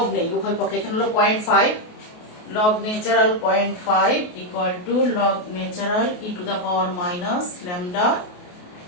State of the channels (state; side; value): late; right; 28 ms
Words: নেই, উভয় পক্ষে এখানে হলো 0.5, log natural 0.5 equal to log natural e to the power minus lambda